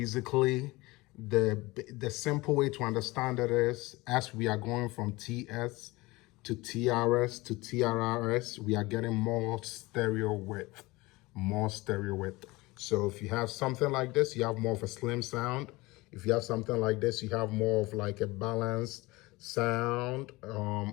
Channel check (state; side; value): quieter; right; 21.7 dB